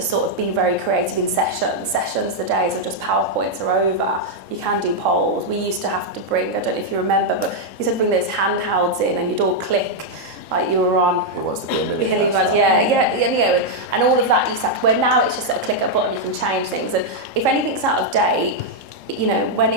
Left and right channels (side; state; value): left; late; 3.7 ms